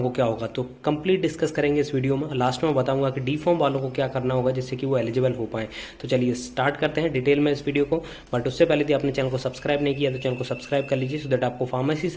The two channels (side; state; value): both; identical; correlation 1.00